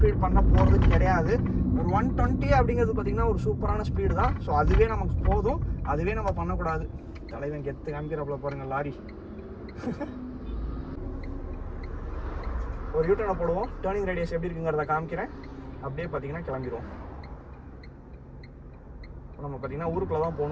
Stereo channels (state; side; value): identical; both; correlation 1.00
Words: பண்ண போகிறது கிடையாது. ஒரு 120 அப்படிங்கிறது பார்த்தீங்கன்னா ஒரு சூப்பரான ஸ்பீடு தான். ஸோ அதுவே நமக்கு போதும், அதுவே நம்ம பண்ணக்கூடாது. தலைவன் கெத்து காமிக்கிறப்பல பாருங்கள் லாரி. ஒரு யூட்டர்னை போடுவோம், டேர்னிங் ரேடியஸ் எப்படி இருக்குங்கிறத காமிக்கிறேன். அப்படியே பார்த்தீங்கன்னா கிளம்பிடுவோம். நம்ம பார்த்தீங்கன்னா ஊருக்குள்ளே தான்